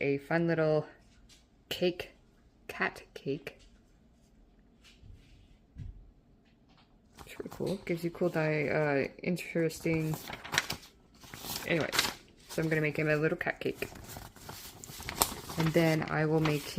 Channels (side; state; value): both; identical; correlation 1.00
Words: a fun little cake, cat cake. It's really cool. Gives you cool, interesting. Anyway, so I'm going to make him a little cat cake. And then I will make